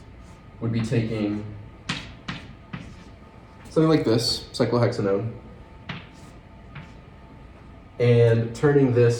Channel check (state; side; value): identical; both; correlation 1.00